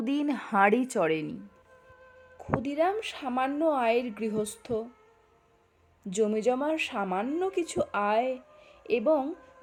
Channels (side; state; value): both; identical; correlation 1.00